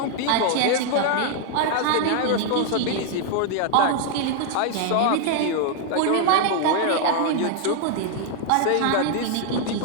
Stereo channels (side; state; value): both; different; correlation 0.00